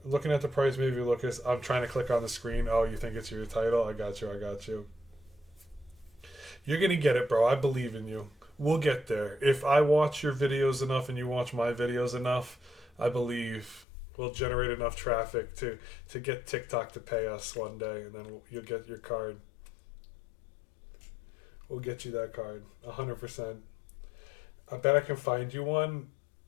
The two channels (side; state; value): right; drops out; at 13.9 s